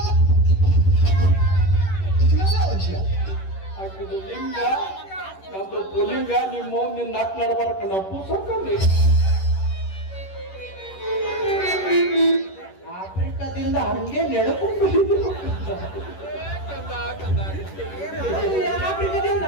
ಹಾಕಿದ್ದು ಲಿಂಗ ನಮ್ದು ಪುಲಿಂಗ ನಿಮ್ಮ ನಿನ್ನ ನಾಕ್ ನಡ್ಬಾರಕ ನಾವು ಪುಸ್ತಕಲ್ಲಿ ಆಫ್ರಿಕಾದಿಂದ ಹಂಗೆ ನೆಡ್ಕೊಂಡು ಆಫ್ರಿಕಾದಿಂದ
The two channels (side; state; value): right; late; 10 ms